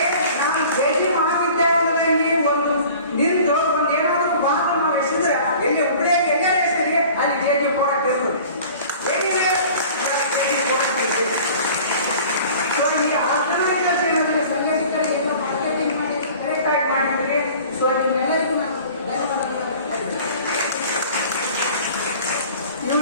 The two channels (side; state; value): both; inverted; correlation -0.45